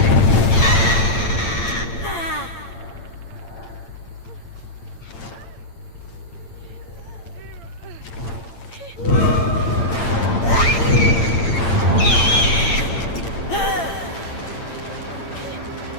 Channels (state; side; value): late; right; 8.8 ms